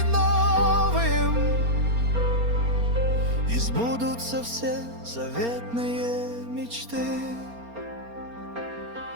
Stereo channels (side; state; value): left; late; 4.3 ms